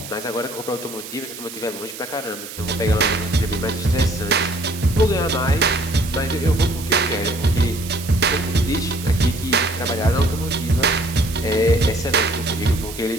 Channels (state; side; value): noise; right; hiss, 12 dB below the sound